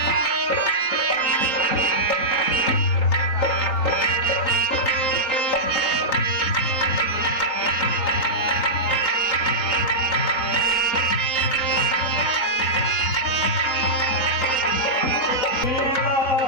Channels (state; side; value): late; right; 3.9 ms